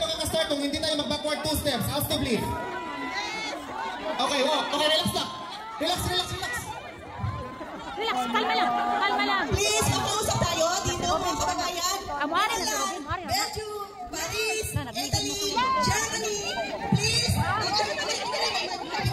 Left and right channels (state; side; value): identical; both; correlation 1.00